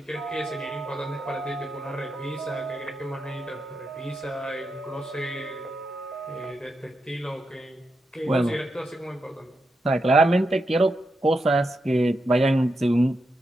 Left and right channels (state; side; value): normal; both; correlation 0.85